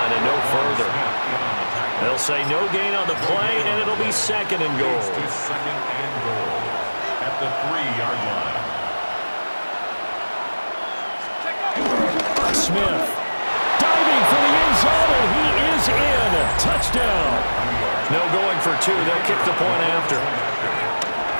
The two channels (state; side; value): inverted; both; correlation -1.00